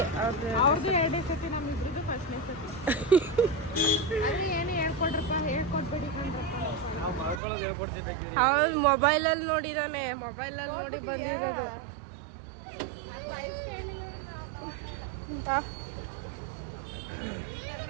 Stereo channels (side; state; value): left; drops out; at 7.4 s